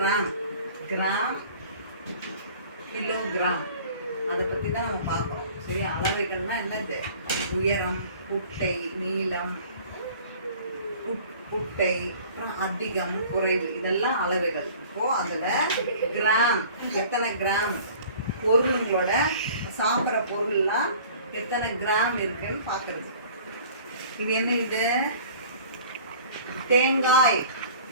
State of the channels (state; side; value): inverted; both; correlation -0.47